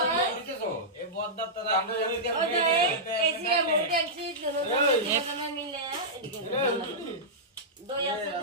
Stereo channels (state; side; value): normal; both; correlation -0.12